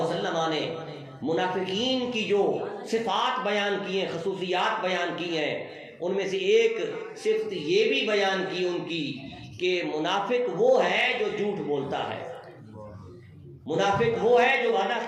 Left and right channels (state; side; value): identical; both; correlation 1.00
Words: وسلم نے منافقین کی جو صفات بیان کی ہیں، خصوصیات بیان کی ہیں، ان میں سے ایک صفت یہ بھی بیان کی ان کی کہ منافق وہ ہے جو جھوٹ بولتا ہے، منافق وہ ہے جو وعدہ